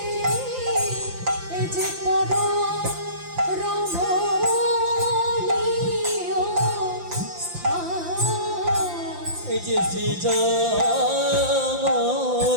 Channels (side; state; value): left; late; 5.8 ms